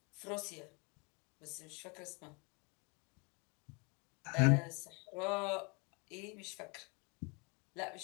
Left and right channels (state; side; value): quieter; right; 31.3 dB